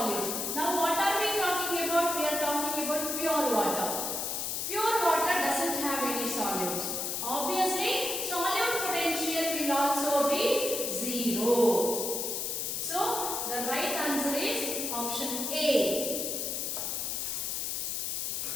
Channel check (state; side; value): noise; left; hiss, 1 dB below the sound